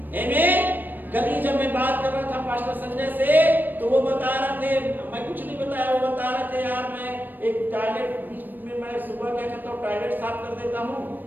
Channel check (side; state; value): left; late; 0.091 ms